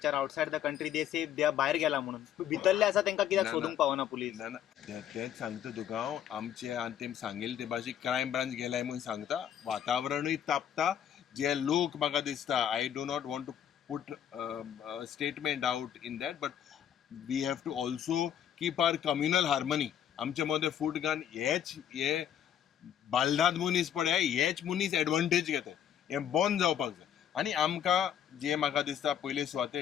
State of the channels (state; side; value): quieter; right; 9.8 dB